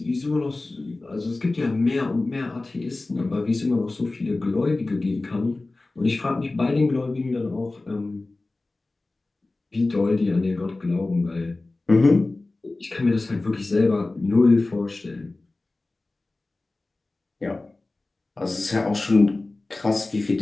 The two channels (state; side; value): quieter; right; 3.1 dB